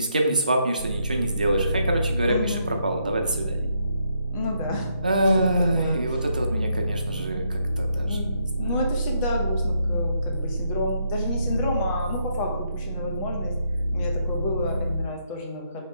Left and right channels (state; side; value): inverted; both; correlation -0.76